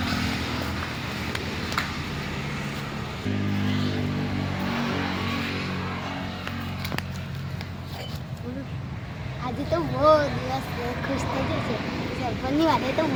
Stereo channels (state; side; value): identical; both; correlation 1.00